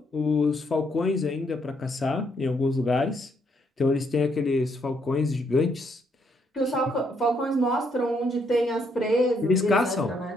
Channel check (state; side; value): normal; both; correlation 0.73